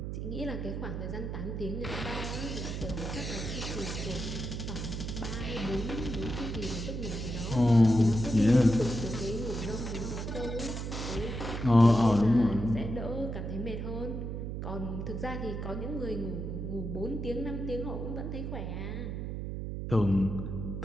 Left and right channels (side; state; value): right; noise; hum, 4 dB below the sound